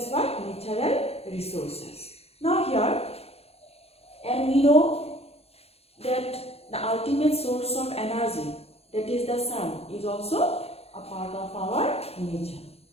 what? Natural resources. Now here, and we know that the ultimate source of energy, that is the sun, is also a part of our nature.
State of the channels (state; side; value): late; right; 0.29 ms